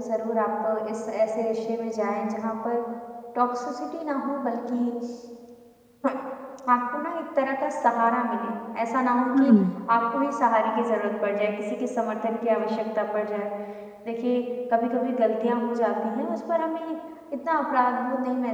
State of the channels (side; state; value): both; identical; correlation 1.00